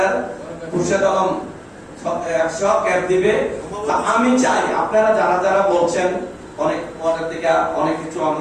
খুরশেদ আলম 100 ক্যাপ দিবে। আমি চাই আপনারা যারা যারা বলছেন অনেক পরের দিকে অনেক কিছু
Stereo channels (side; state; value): both; identical; correlation 1.00